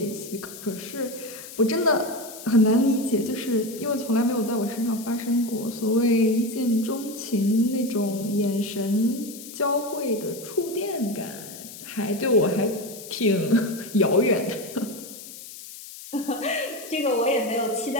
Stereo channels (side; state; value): left; noise; hiss, 14 dB below the sound